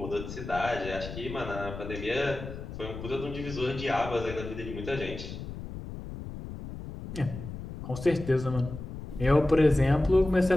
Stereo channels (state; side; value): noise; left; rumble, 10 dB below the sound